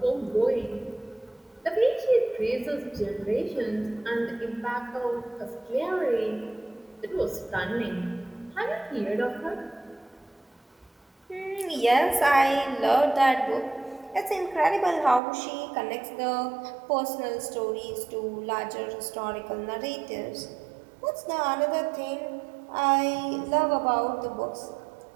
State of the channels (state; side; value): drops out; left; at 15.2 s